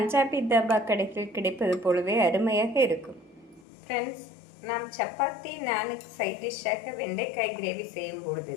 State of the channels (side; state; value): right; drops out; at 3.6 s